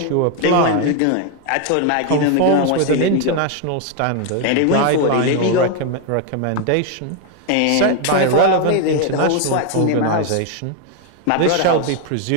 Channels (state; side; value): different; both; correlation 0.01